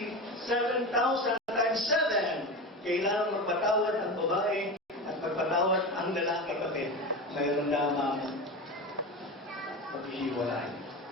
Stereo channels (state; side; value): normal; both; correlation 0.24